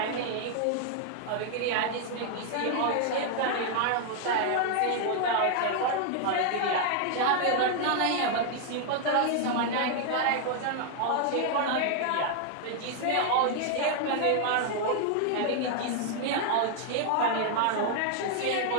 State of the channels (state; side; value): different; both; correlation 0.00